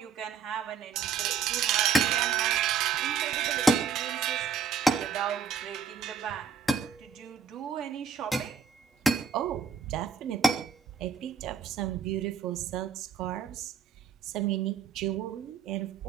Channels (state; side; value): quieter; left; 6.1 dB